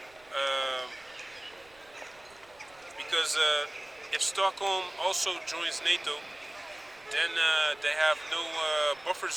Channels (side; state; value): right; noise; rumble, 29 dB below the sound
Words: because if Stockholm also joins NATO, then they have no buffer